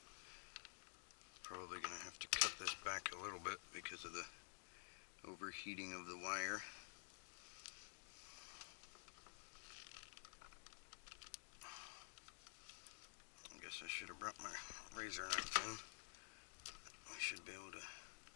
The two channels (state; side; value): silent; right; digital silence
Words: Probably going to have to cut this back a little bit because of the overheating of the wire. I guess I should have brought my razor knife in. I should be able to